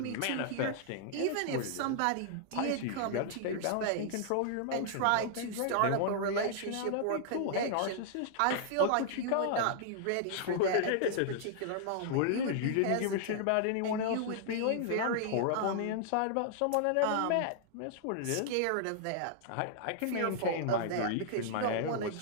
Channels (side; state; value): both; different; correlation -0.01